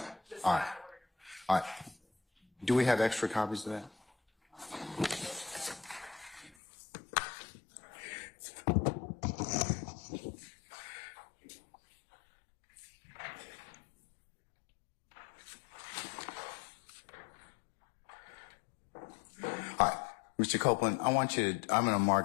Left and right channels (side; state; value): right; drops out; at 6.5 s